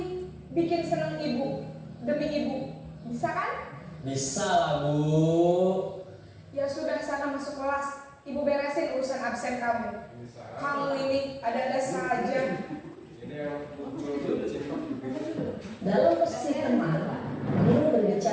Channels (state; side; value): identical; both; correlation 1.00